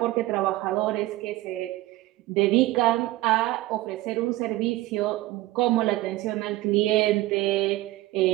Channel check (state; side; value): quieter; left; 17.7 dB